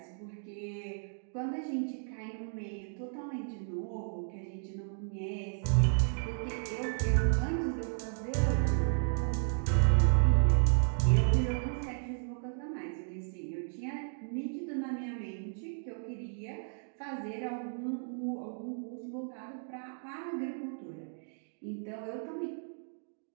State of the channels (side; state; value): left; silent; digital silence